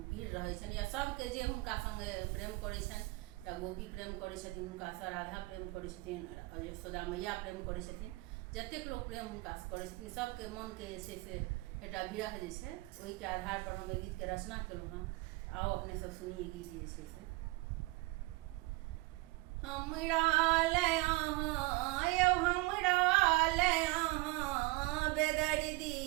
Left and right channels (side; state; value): left; quieter; 22.0 dB